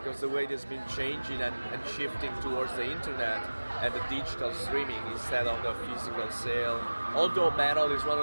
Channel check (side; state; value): both; inverted; correlation -1.00